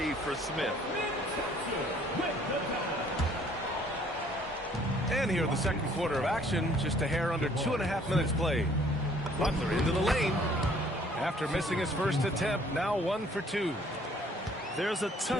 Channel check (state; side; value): normal; both; correlation 0.59